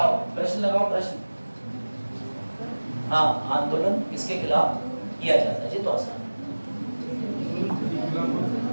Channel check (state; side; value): inverted; both; correlation -1.00